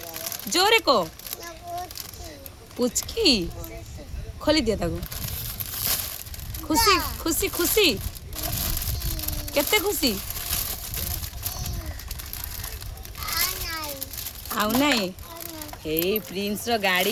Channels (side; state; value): both; identical; correlation 1.00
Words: जोरे को पुचकी खोली दिया ताको खुशी खुशी खुशी केते खुशी आउ नाही हे प्रिंस रो